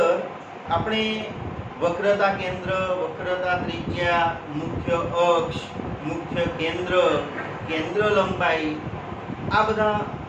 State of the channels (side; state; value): both; identical; correlation 1.00